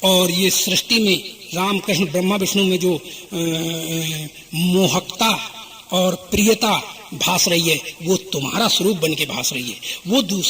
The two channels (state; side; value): identical; both; correlation 1.00